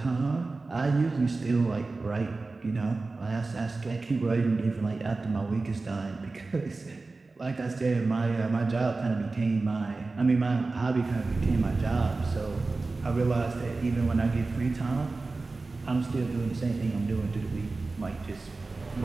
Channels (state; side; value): quieter; left; 3.6 dB